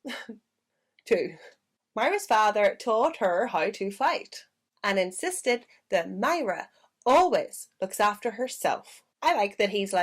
too. Myra's father taught her how to fight and insisted that Myra always looks after herself. I like that he's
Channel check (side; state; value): both; identical; correlation 1.00